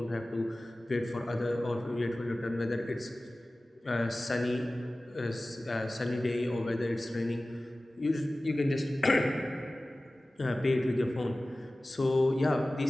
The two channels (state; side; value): normal; both; correlation 0.97